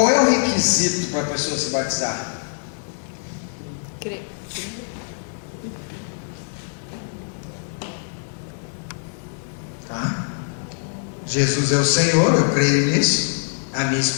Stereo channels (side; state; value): right; silent; digital silence